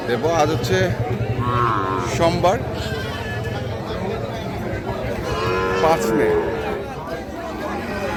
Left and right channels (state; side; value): identical; both; correlation 1.00